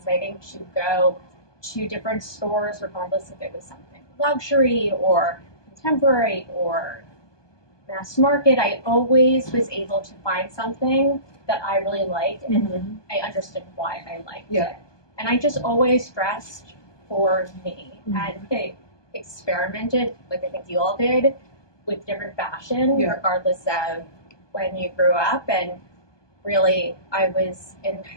to go to different stores, regardless if it was something luxury or contemporary or mass market. I always was able to find something that I really liked, and I understood why I liked it. And I just always dressed for me, and I experimented, like I think you all did, with different fashion, regardless of when you grew up. And really, I was in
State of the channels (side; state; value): right; late; 1.2 ms